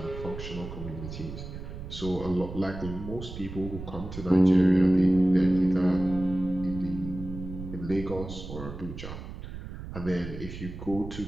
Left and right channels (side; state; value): right; noise; rumble, 10 dB below the sound